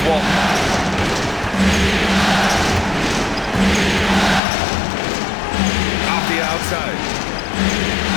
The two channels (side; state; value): right; drops out; at 4.4 s